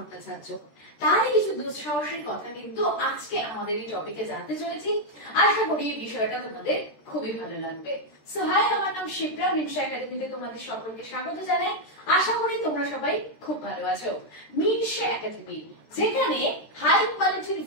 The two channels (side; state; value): right; late; 13 ms